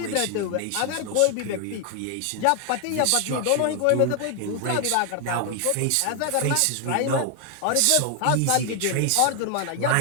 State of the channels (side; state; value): both; different; correlation 0.00